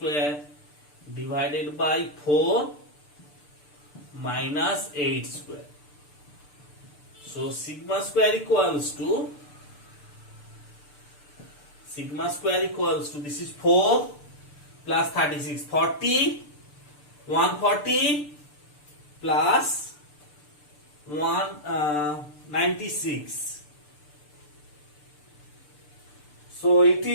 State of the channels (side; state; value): right; late; 6.8 ms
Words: divided by 4 minus 8 square. So sigma square equals to, this is 4 plus 36, 40, 140 plus 196. So it